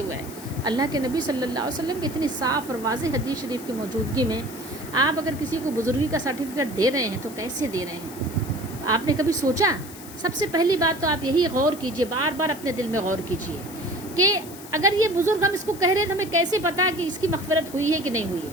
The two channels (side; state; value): left; noise; hiss, 16 dB below the sound